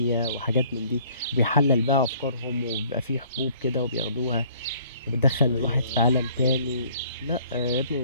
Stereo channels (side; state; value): both; inverted; correlation -0.58